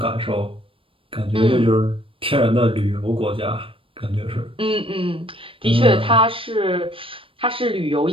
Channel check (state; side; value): late; left; 0.26 ms